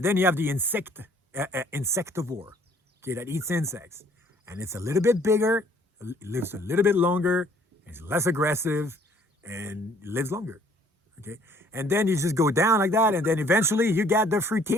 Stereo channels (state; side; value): normal; both; correlation 0.59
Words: then you have the insectivore, okay, that eats insects. And it's a little bit bigger, lives a little bit longer, is less aggressive, and lives longer, okay? And then you just go down like that, and then eventually you get the